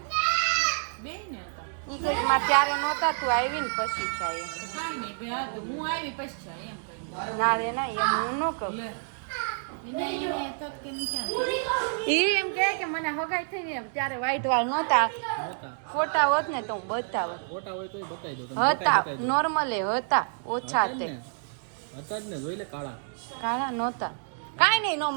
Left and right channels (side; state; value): left; silent; digital silence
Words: બે ને હતા. ઈ કે મારે ત્યારે નહોતા, તું આવી ને પછી થાય એમ. કાંઈ નહીં બે હા તો હું આવી પછી છે એમ કહ્યું. ના રે ના, એમ હું ન કહું. લે એને તો કેમ ક્યાં ઈ એમ કે મને હગાઈ થઈ ને એમ ત્યારે વ્હાઈટ વાળ નહોતા. ફોટા હોત ને તો હું બતાવત. ફોટા હોય તો બતાવી દો. હતા નોર્મલે હતા, ઓછા તે હતા જ ને, જોઈ લે કાળા. કાળા નહોતા. કાંઈ નહીં નો